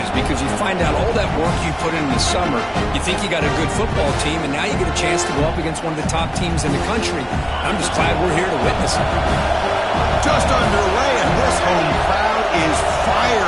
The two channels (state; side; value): identical; both; correlation 1.00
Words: because you find out all that work you put in the summer. You think you got a good football team, and now you get a chance to go up against one of the top teams in the country. I'm just glad we're here to witness it. Just underway, and this home crowd is